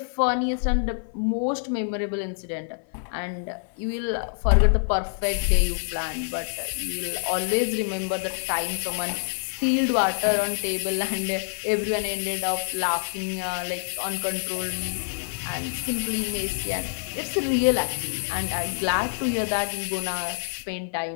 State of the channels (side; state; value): right; silent; 59 dB below the other